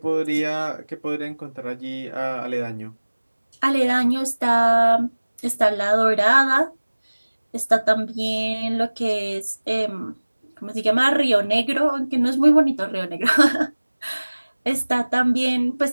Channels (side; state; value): both; inverted; correlation -1.00